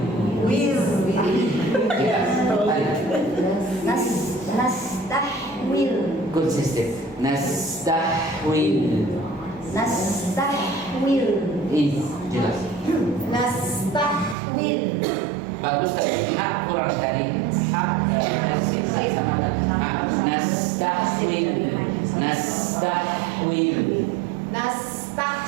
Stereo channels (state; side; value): drops out; left; at 14.4 s